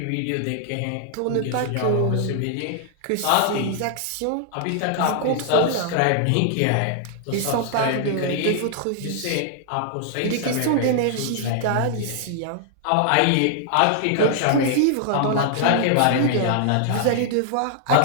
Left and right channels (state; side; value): different; both; correlation -0.01